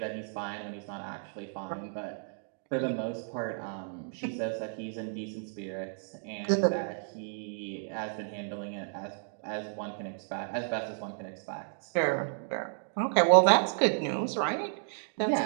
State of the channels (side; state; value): left; silent; digital silence